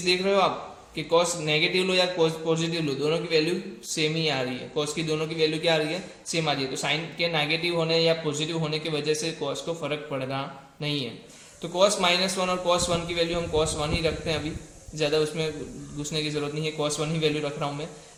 देख रहे हो आप कि cos नेगेटिव लो या cos पॉजिटिव लो, दोनों की वैल्यू सेम ही आ रही है। cos की दोनों की वैल्यू क्या आ रही है, सेम आ रही है। तो साइन के नेगेटिव होने या पॉजिटिव होने की वजह से cos को फर्क पड़ रहा नहीं है। तो cos -1 और cos 1 की वैल्यू हम cos 1 ही रखते हैं, अभी ज़्यादा उसमें घुसने की जरूरत नहीं है, cos 1 ही वैल्यू रख रहा हूँ मैं।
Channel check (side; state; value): both; identical; correlation 1.00